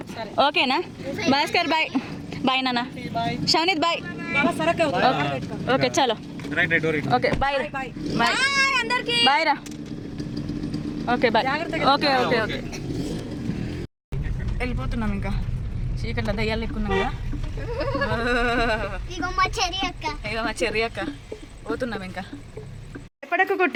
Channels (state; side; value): identical; both; correlation 1.00